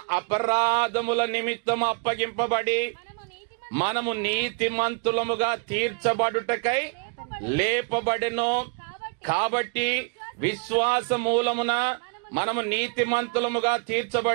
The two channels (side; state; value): left; quieter; 34.1 dB